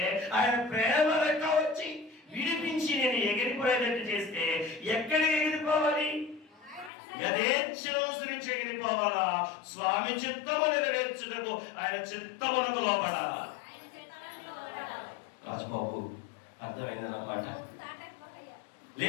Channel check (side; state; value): right; drops out; at 6.9 s